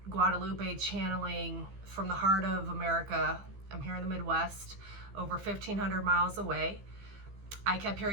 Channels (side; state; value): left; late; 15 ms